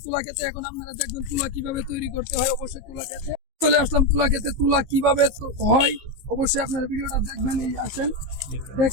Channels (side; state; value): left; late; 15 ms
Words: তুলা খেতে। এখন আপনারা দেখবেন তুলা কিভাবে তৈরি করতে হয়। অবশ্যই তুলা খেতে চলে আসলাম। তুলা খেতে তুলা কিভাবে হয় অবশ্যই আপনারা ভিডিওটা দেখবেন। এই আসেন,